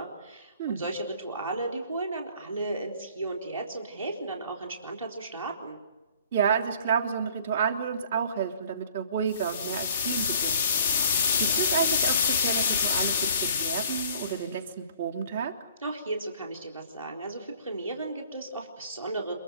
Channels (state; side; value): inverted; both; correlation -0.53